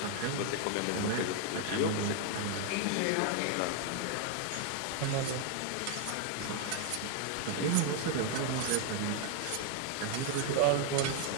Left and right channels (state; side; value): different; both; correlation 0.00